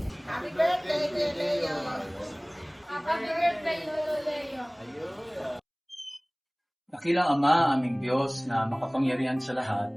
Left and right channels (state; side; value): identical; both; correlation 1.00